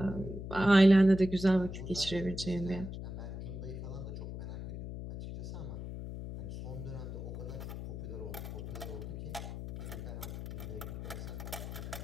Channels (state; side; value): noise; left; hum, 8 dB below the sound